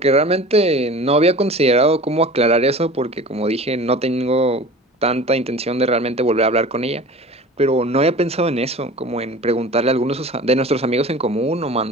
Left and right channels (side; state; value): both; normal; correlation 0.39